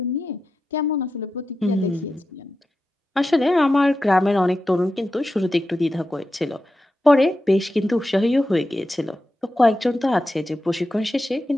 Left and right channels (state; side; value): normal; both; correlation 0.90